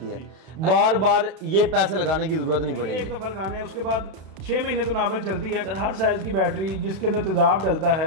है, बार बार ये पैसे लगाने की जरूरत नहीं पड़ेगी। एक दफा लगाने हैं, उसके बाद 6 महीने तो नॉर्मल चलती है। हर साइज की बैटरी जिसके अंदर तेजाब डलता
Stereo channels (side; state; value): left; late; 32 ms